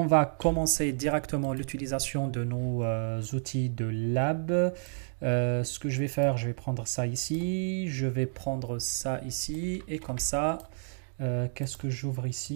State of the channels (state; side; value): silent; left; digital silence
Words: va commencer directement l'utilisation de nos outils de lab. Ce que je vais faire, je vais prendre ça ici, je vais prendre ça ici, et comme ça, qu'est-ce que j'ouvre